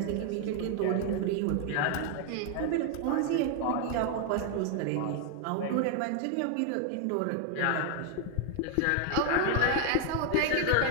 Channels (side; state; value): both; different; correlation 0.00